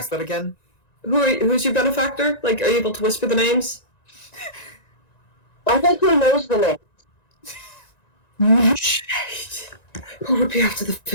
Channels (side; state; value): right; late; 1.9 ms